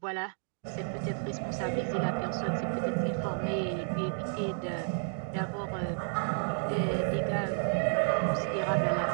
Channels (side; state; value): left; silent; 57 dB below the other